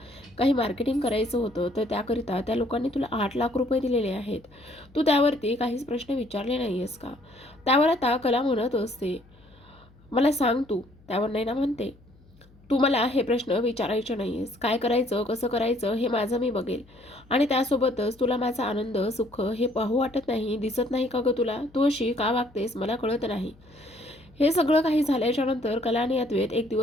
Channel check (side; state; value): left; noise; hum, 27 dB below the sound